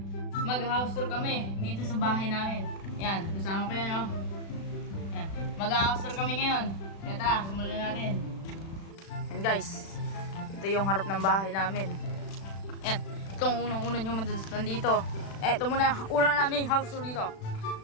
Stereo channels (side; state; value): right; late; 36 ms